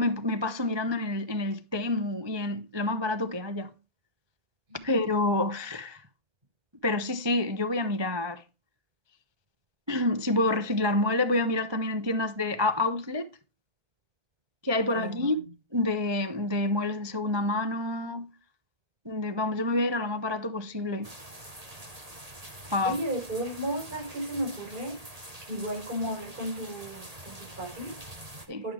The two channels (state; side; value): late; left; 1.8 ms